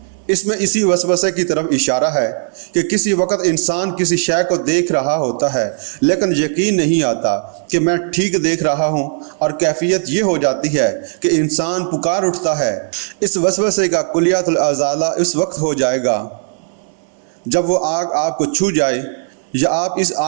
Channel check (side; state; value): left; silent; digital silence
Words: اس میں اسی وسوسے کی طرف اشارہ ہے کہ کسی وقت انسان کسی شے کو دیکھ رہا ہوتا ہے لیکن یقین نہیں آتا کہ میں ٹھیک دیکھ رہا ہوں، اور کیفیت یہ ہو جاتی ہے کہ انسان پکار اٹھتا ہے۔ اس وسوسے کا کلیات الازالہ اس وقت ہو جائے گا جب وہ آگ آپ کو چھو جائے یا آپ اس